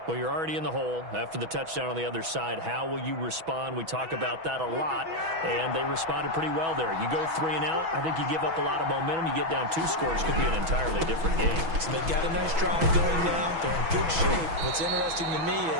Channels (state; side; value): late; left; 6.1 ms